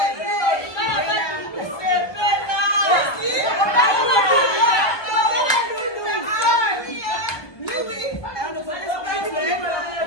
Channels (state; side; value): late; right; 1.2 ms